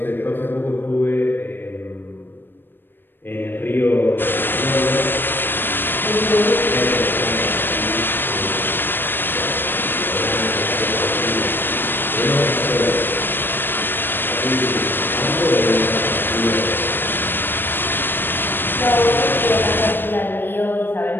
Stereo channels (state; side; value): late; right; 0.097 ms